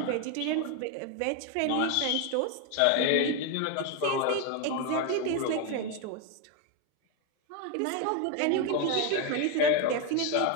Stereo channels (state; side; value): different; both; correlation 0.02